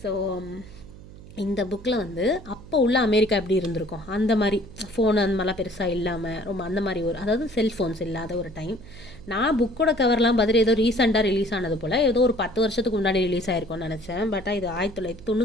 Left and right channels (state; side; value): noise; right; hum, 17 dB below the sound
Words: ஸோ இந்த புக்கில் வந்து அப்போ உள்ள அமெரிக்கா எப்படி இருந்திருக்கும், அந்த மாதிரி ஃபோன் அந்த மாதிரிலாம் பெருசாக இல்லாமல் ரொம்ப அந்த மாதிரி ஒரு, அதாவது செல்ஃபோன்ஸ் இல்லாத ஒரு டைம். நான் புக்கோட கவர்லாம் பார்த்துட்டு ஏதோ ரீசெண்டாக ரிலீஸ் ஆனது போல் ஏதோ ஒரு 10 வருஷத்துக்கு முன்னாடி ரிலீஸ் ஆயிருக்கும்னு நினச்சேன். பட் இது